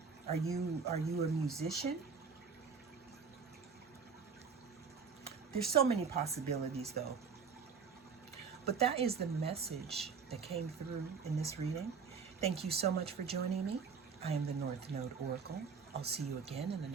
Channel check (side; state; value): left; quieter; 5.7 dB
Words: Are you a musician? There's so many possibilities though. But that is the message that came through in this reading. Thank you so much for joining me. I am the North Node Oracle. I'll see you again in the